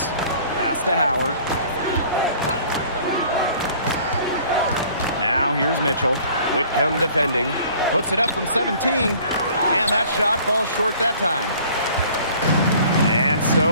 Pass to Howard. Now here's Mitchell. Whitcomb defending. Puts it up from 17. And that shot falls short that time. And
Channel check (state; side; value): inverted; both; correlation -0.52